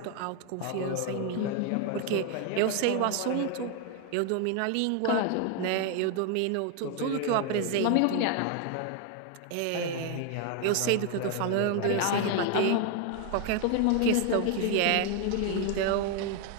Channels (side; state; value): both; different; correlation 0.01